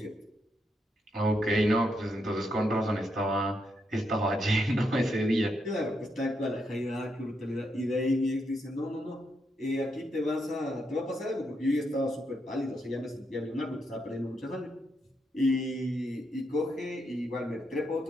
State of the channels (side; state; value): both; normal; correlation 0.80